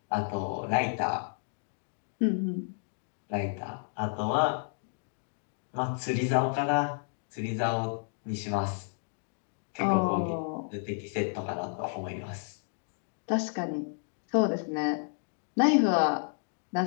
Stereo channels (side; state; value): right; silent; digital silence